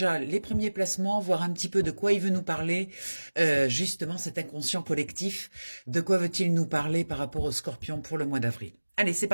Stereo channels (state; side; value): inverted; both; correlation -1.00